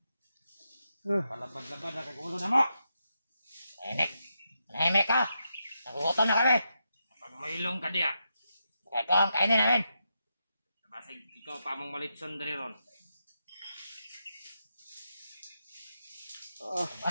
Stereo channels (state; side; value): inverted; both; correlation -0.85